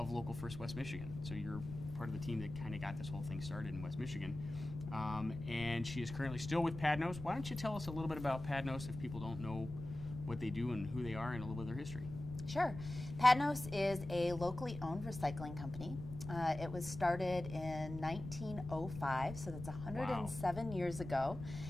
Local First West Michigan. So, you're part of the team that kind of got this whole thing started in West Michigan. And she is currently still with Padnos. Why don't you tell us a little bit about Padnos if people don't know what they do and who they are and a little bit of their history? Sure. Padnos is a locally owned recycling company. It was started in 1905, so that's 107 years ago,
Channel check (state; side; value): noise; left; rumble, 10 dB below the sound